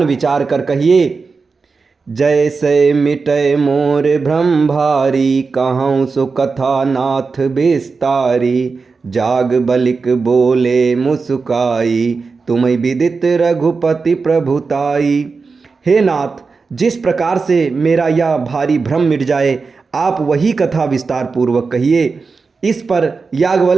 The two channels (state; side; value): quieter; left; 4.6 dB